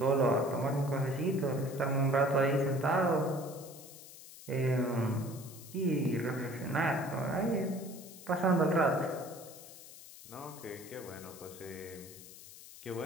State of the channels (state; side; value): noise; left; hiss, 17 dB below the sound